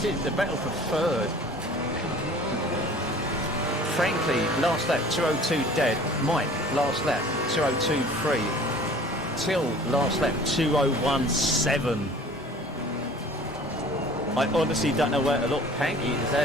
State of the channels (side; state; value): both; normal; correlation 0.47